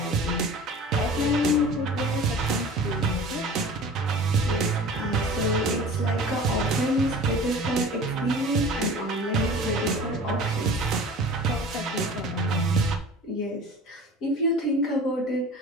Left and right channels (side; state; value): both; normal; correlation 0.40